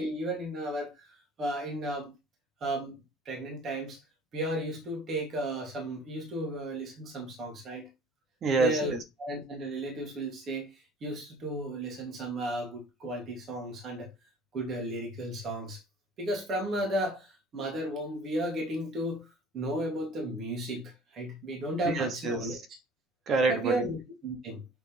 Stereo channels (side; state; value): both; normal; correlation 0.49